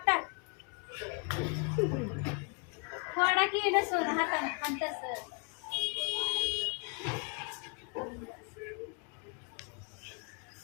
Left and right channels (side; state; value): right; quieter; 35.3 dB